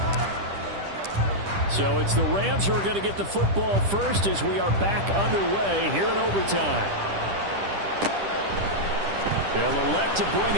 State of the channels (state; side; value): late; left; 10 ms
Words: So it's the Rams who are going to get the football first as we are back underway here in overtime. They'll elect to bring